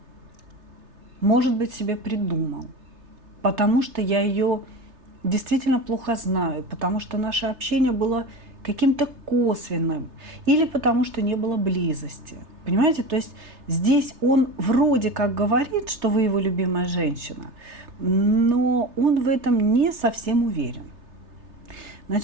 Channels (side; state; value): left; late; 3.3 ms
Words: может быть, себе придумал, потому что я ее действительно плохо знаю, потому что наше общение было каким-то косвенным, или потому что не было близости. Понимаете, то есть здесь он вроде как говорит, что вы его любимая женщина, но он в этом не совсем уверен.